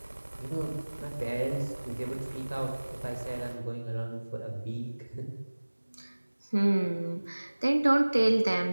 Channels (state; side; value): inverted; both; correlation -1.00